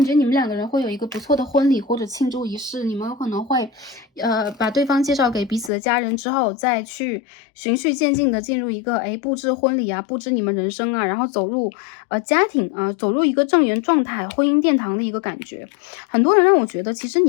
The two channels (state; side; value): drops out; right; at 5.7 s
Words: 觉你们两个人会有一个不错的婚礼或者庆祝仪式，你们有可能会，把对方介绍给彼此的家人之后，再去循序渐进的进入一个，布置婚礼布置你们人生然后走入家庭走入一个正缘状态、婚姻殿堂的一个感觉。很多人让我觉得，其实